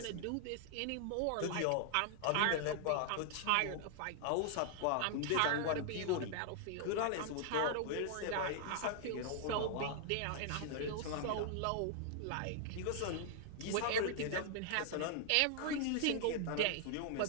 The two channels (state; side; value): different; both; correlation 0.00